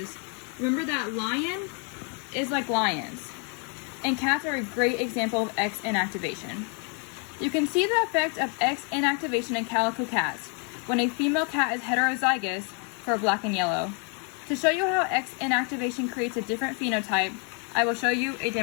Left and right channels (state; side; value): quieter; right; 37.5 dB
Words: remember that lion is like lions, and cats are a great example of X inactivation. You can see the effect of X inactivation in calico cats when a female cat is heterozygous for black and yellow. To show you how X inactivation creates a different phenotype, I will show you a